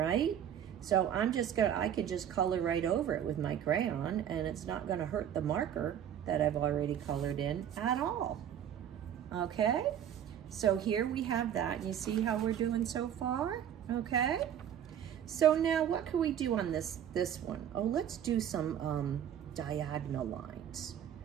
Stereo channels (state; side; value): quieter; left; 9.7 dB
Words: So I could just color right over it with my crayon, and it's not gonna hurt the marker that I've already colored in at all, okay? So here we have that. You see how we're doing so far, okay? So now what can we do on this one? Oh, let's do some diagonal lines,